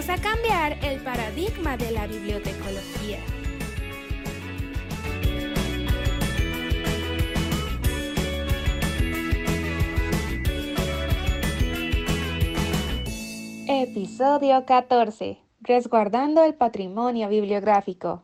a cambiar el paradigma de la bibliotecología. Episodio 14. Resguardando el patrimonio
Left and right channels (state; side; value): identical; both; correlation 1.00